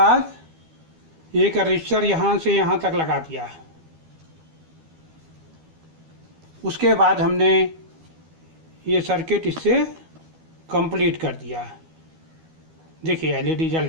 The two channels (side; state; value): left; late; 12 ms